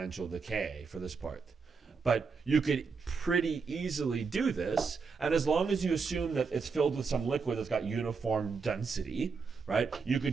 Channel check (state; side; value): quieter; left; 5.1 dB